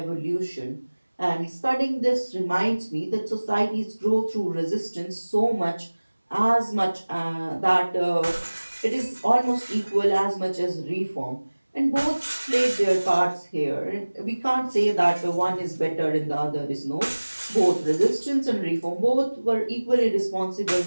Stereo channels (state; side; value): inverted; both; correlation -1.00